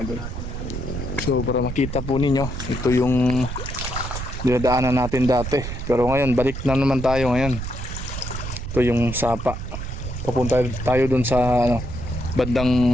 idol. So para makita po ninyo, ito yung dinadaanan natin dati, pero ngayon balik na naman tayo ngayon. Ito yung sapa, papunta tayo dun sa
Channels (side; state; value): right; noise; rumble, 6 dB below the sound